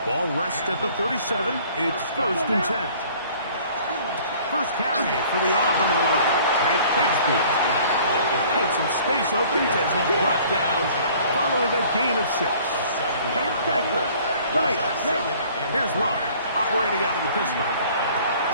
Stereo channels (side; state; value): both; inverted; correlation -0.53